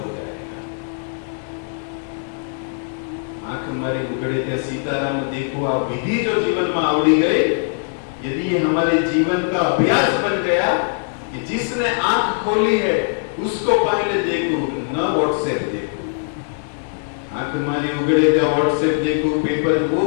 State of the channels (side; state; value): right; silent; digital silence